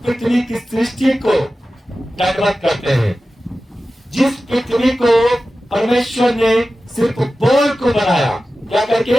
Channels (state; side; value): normal; both; correlation 0.94